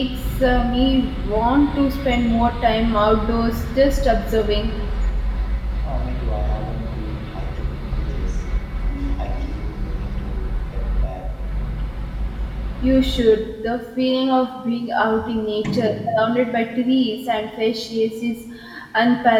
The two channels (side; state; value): both; identical; correlation 1.00